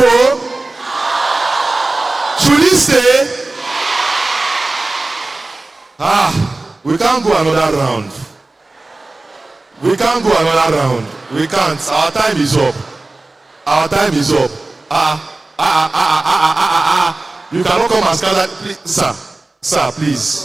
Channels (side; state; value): left; quieter; 3.1 dB